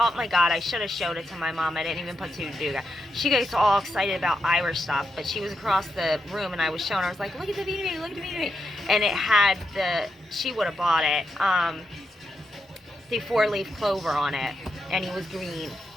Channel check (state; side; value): normal; both; correlation 0.83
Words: my God, I should have showed it to my mom. I didn't even put two together. She gets all excited about Irish stuff, but she was across the room and I was showing her. I was like, look at the Beanie Baby, look at the Beanie Baby. And it had she would have bought it, the 4-leaf clover on it. And he was green.